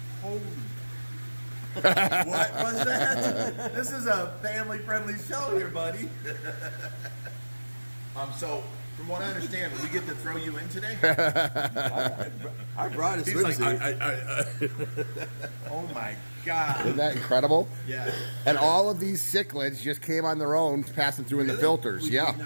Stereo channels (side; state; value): both; inverted; correlation -1.00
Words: Holy. What was that? This is a family-friendly show here, buddy. So, from what I understand, we get to throw you in today? I brought a He's like, swimsuit. Oh my God. Isn't that incredible? Yeah. And all of these cichlids just came on their own, passing through in the filters. We Yeah. did